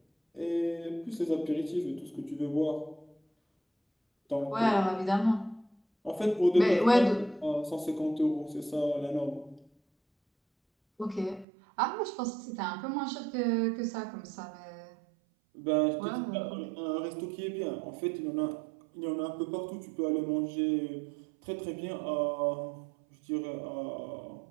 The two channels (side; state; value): left; drops out; at 11.5 s